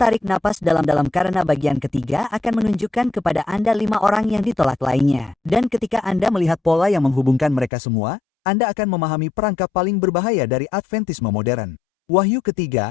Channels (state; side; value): drops out; right; at 7.7 s